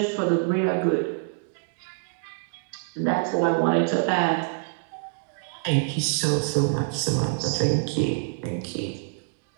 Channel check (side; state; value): left; silent; digital silence